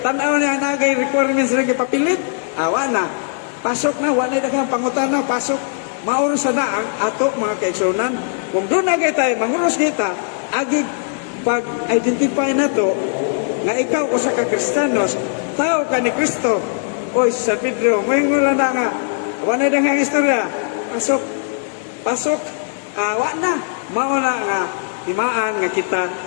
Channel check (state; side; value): silent; right; 63 dB below the other